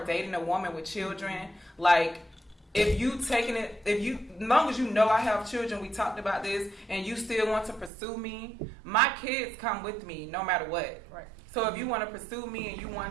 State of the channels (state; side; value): drops out; left; at 7.9 s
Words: dating a woman with children, like, as long as I have children, we talked about this, and you still want to pursue me, my kids come with me no matter what. Right. So if you want to pursue me and you